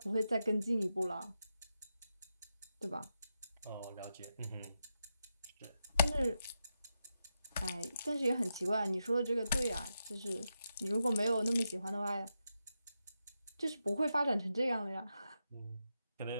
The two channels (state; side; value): inverted; both; correlation -0.86